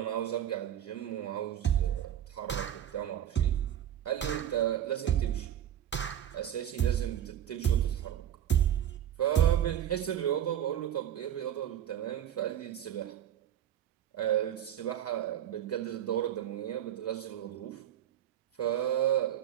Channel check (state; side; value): quieter; left; 10.4 dB